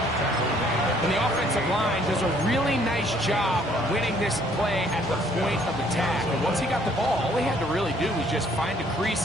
And the offensive line does a really nice job winning this play at the point of attack. And once he got the ball, all he had to really do was just find a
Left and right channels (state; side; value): normal; both; correlation 0.62